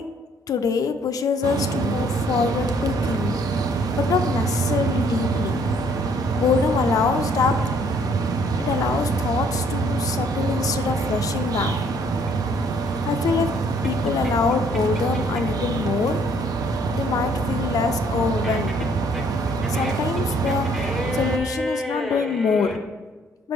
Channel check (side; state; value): both; normal; correlation 0.62